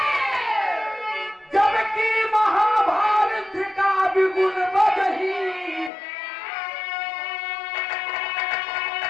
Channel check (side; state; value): right; drops out; at 5.9 s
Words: जबकि महाभारत का विगुण बजही।